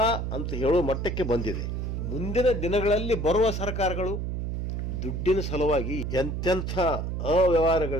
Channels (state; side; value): noise; right; hum, 3 dB below the sound